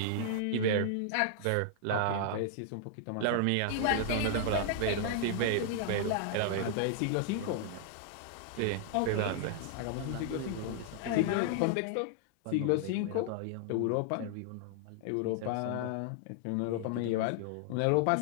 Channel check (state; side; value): different; both; correlation -0.01